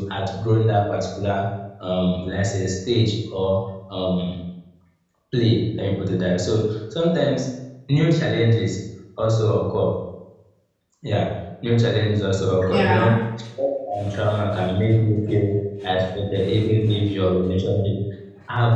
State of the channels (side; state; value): both; identical; correlation 1.00